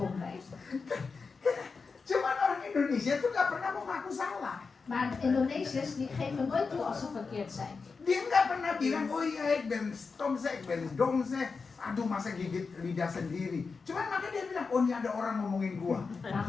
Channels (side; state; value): right; quieter; 4.8 dB